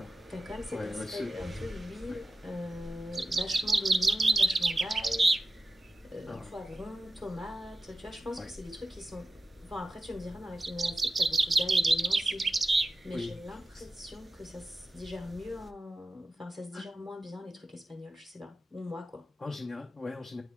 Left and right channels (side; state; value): both; normal; correlation 0.94